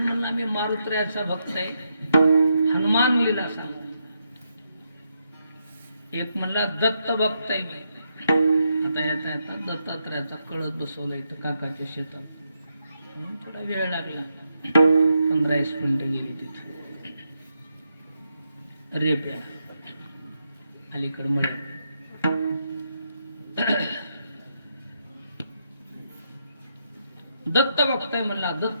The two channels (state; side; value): inverted; both; correlation -0.81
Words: म्हणला मी मारुत्र्याचा भक्त आहे, हनुमान लीला सांगा. एक म्हणला दत्त भक्त आहे मी. आता याचा दत्तात्रयाचा कळस बसवला इथं काकाच्या शेतात. म्हणून थोडा वेळ लागला. 15-20 मिनिटं गेली तिथे. रेप अलीकडे मळ. दत्त भक्त आहे म्हणला